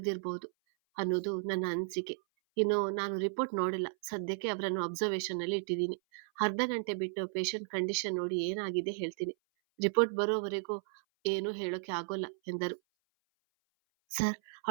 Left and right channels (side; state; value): left; silent; 55 dB below the other